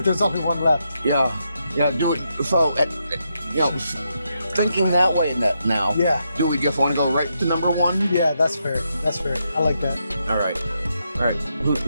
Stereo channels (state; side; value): inverted; both; correlation -0.82